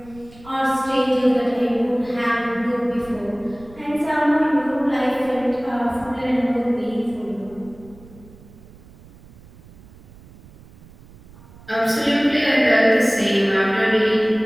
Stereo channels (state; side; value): noise; right; rumble, 22 dB below the sound